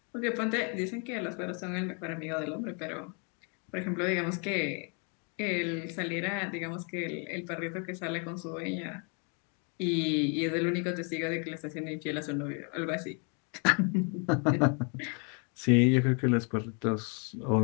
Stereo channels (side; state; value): right; quieter; 37.2 dB